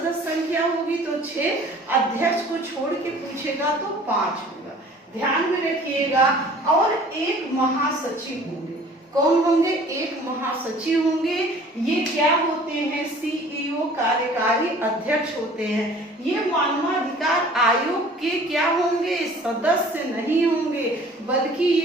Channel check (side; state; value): both; normal; correlation 0.50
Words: संख्या होगी, तो 6। अध्यक्ष को छोड़ के पूछेगा तो 5 होगा, ध्यान में रखिएगा। और एक महासचिव होंगे। कौन होंगे, एक महासचिव होंगे। ये क्या होते हैं, CEO कार्यकारी अध्यक्ष होते हैं। ये मानवाधिकार आयोग के क्या होंगे, सदस्य नहीं होंगे, बल्कि